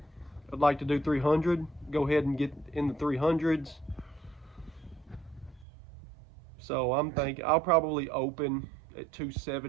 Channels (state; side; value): drops out; left; at 5.7 s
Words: like to do 300, go ahead and get in the 300s. So I'm thinking I'll probably open at